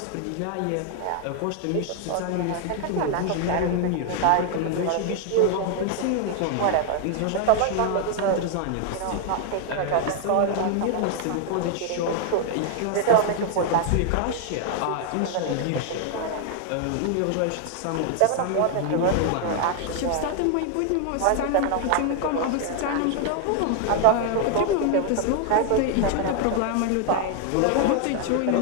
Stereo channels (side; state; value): both; different; correlation 0.00